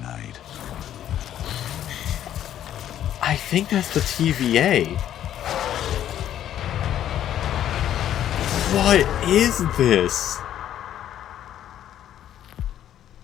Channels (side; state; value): right; quieter; 11.1 dB